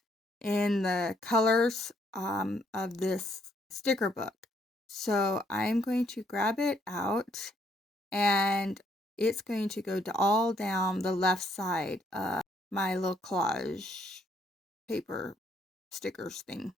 in the colors of this sticker book. So I'm going to grab it out, and it's going to go all down the left side of my little collage paper stickers thing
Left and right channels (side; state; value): both; normal; correlation 0.70